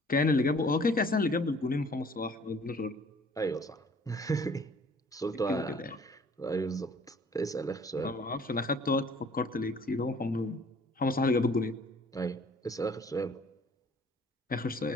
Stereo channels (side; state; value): both; normal; correlation 0.55